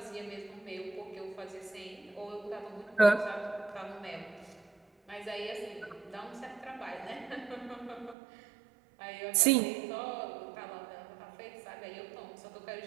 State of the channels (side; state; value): left; drops out; at 8.2 s